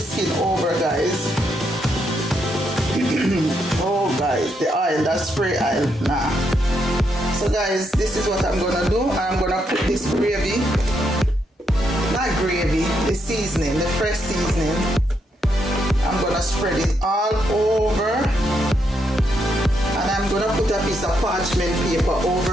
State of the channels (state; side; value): normal; both; correlation 0.78